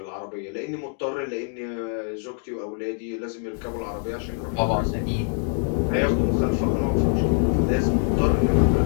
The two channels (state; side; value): silent; right; 55 dB below the other